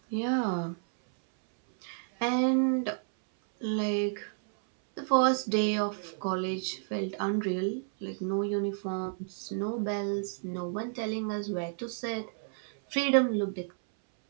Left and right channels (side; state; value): left; silent; 57 dB below the other